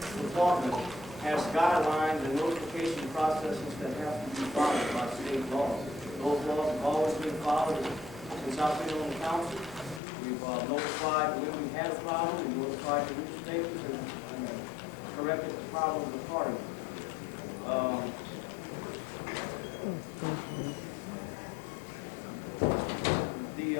department has guidelines and notification processes that have to be followed by state law. Those laws have always been followed since I've been on the council. We've notified when we had a problem, we notified the newspapers and corrected the problems accordingly. The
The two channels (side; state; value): right; drops out; at 10.0 s